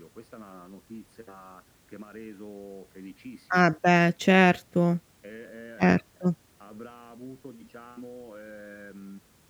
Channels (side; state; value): both; identical; correlation 1.00